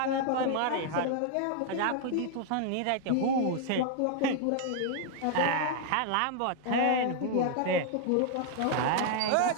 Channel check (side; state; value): both; different; correlation 0.00